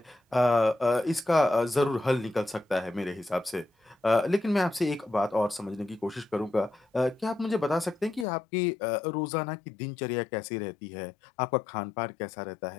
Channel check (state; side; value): drops out; right; at 8.2 s